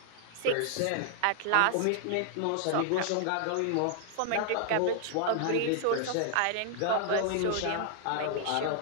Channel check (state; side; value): different; both; correlation 0.00